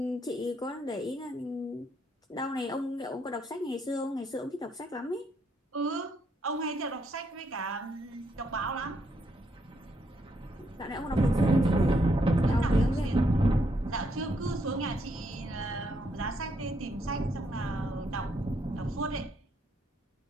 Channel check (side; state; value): both; normal; correlation 0.75